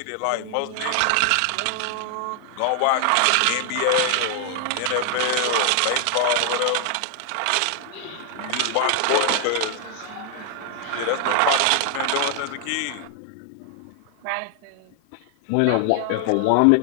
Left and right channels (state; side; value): different; both; correlation 0.00